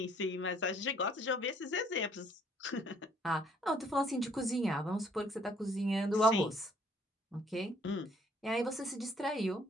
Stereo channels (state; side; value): normal; both; correlation 0.63